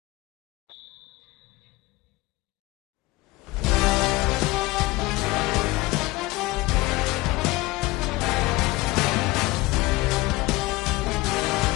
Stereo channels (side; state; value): right; quieter; 20.6 dB